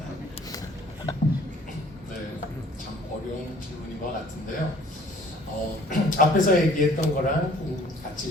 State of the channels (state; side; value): normal; both; correlation 0.54